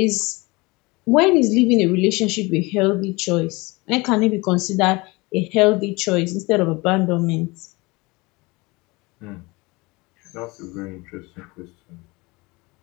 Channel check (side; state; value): right; quieter; 24.3 dB